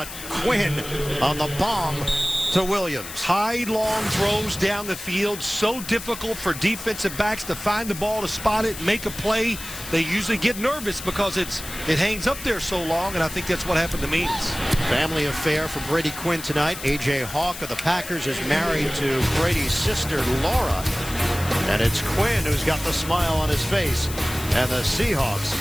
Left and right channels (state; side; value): noise; left; hiss, 11 dB below the sound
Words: Quinn on the bomb to Williams. High, long throws down the field. So difficult for defensive backs to find the ball, to spot it, make a play. They usually get nervous because it hangs up there so long, and I think that's what happened to Means. Family affair for Brady Quinn tonight. A.J. Hawk of the Packers is married to Brady's sister, Laura. And it's Quinn who's got the smile on his face. And the Seahawks